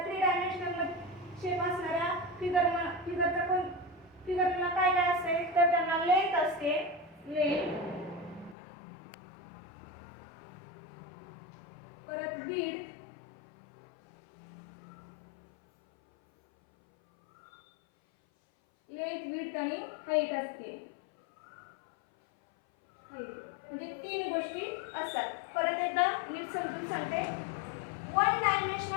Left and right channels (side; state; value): right; drops out; at 8.6 s